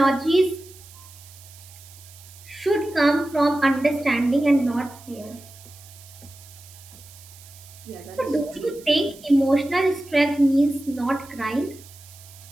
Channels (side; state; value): right; noise; hiss, 21 dB below the sound